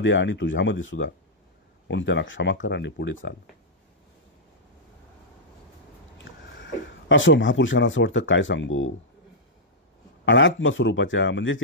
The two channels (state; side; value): normal; both; correlation -0.09